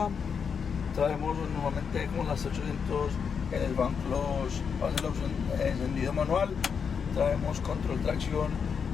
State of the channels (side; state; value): right; quieter; 6.4 dB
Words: Traemos normalmente como las 800 en el banco, hace la opción encendido manual. Traemos control tracción,